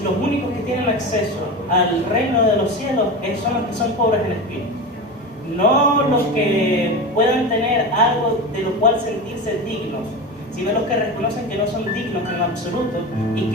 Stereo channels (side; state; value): both; normal; correlation 0.25